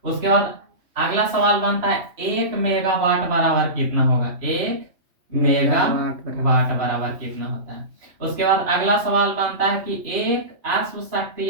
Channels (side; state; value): left; late; 3.1 ms